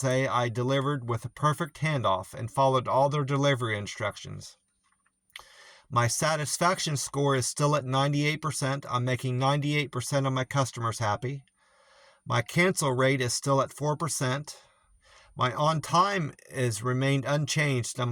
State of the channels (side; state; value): both; identical; correlation 1.00